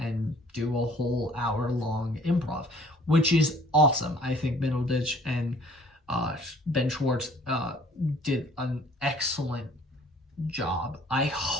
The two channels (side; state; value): both; normal; correlation 0.55